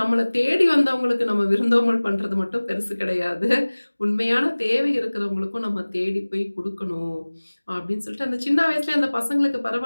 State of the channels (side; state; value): both; inverted; correlation -1.00